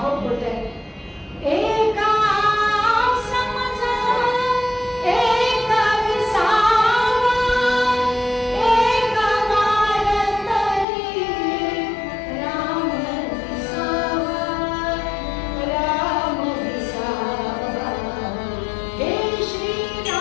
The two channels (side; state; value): right; drops out; at 10.9 s